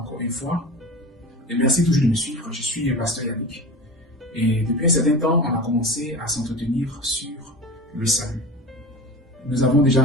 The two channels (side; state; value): both; normal; correlation 0.31